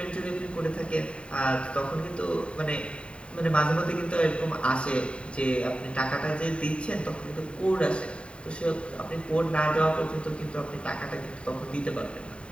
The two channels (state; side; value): late; right; 0.057 ms